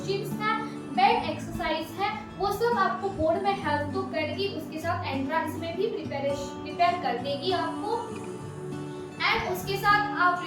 है, बेड एक्सरसाइज है, वो सब आपको बोर्ड में हेल्प तो करेगी, उसके साथ एंट्रेंस में भी प्रिपेयर कर देगी आपको। एंड उसके साथ आप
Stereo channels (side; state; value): both; identical; correlation 1.00